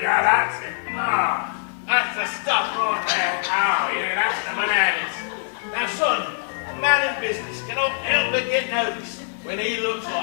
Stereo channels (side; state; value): right; silent; digital silence